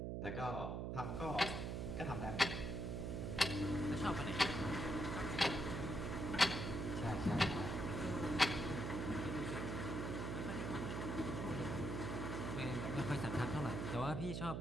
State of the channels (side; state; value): right; noise; hum, 2 dB below the sound